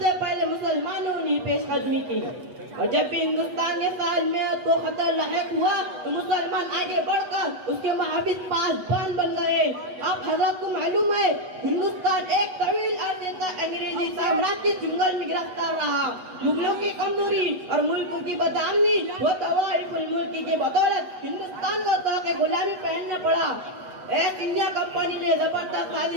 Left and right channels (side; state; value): left; late; 8.1 ms